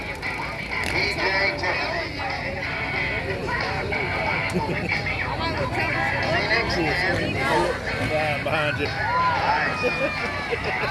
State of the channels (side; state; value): both; identical; correlation 1.00